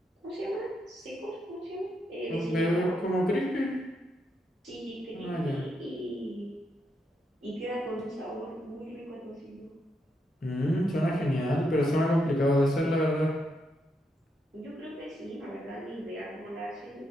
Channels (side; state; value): both; normal; correlation 0.80